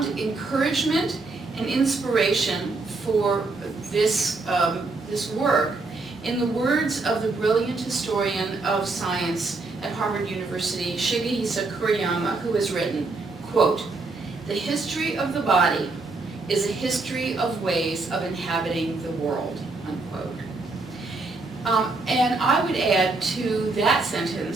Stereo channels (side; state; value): left; quieter; 3.5 dB